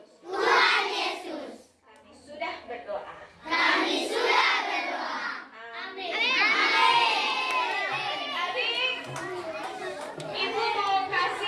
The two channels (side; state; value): both; identical; correlation 1.00